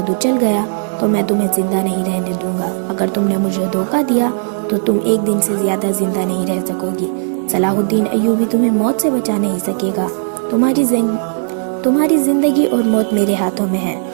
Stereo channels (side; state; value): left; silent; 64 dB below the other